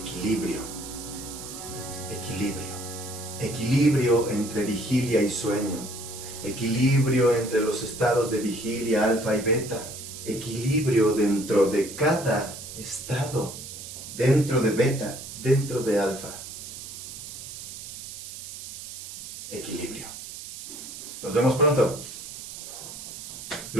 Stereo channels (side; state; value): right; noise; hiss, 11 dB below the sound